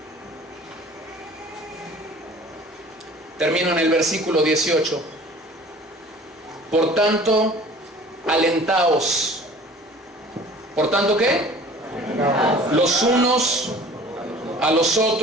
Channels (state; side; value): normal; both; correlation 0.47